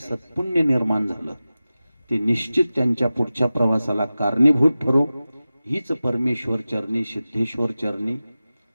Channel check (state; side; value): inverted; both; correlation -0.95